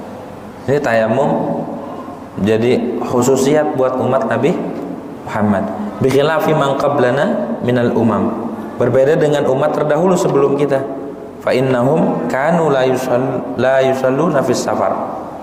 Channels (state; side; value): identical; both; correlation 1.00